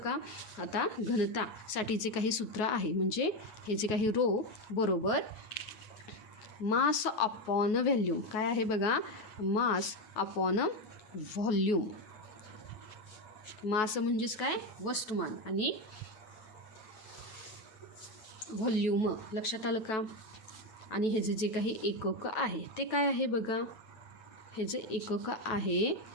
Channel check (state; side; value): late; right; 9.3 ms